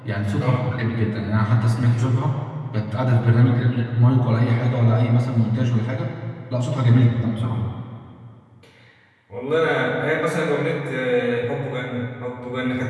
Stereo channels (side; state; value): both; identical; correlation 1.00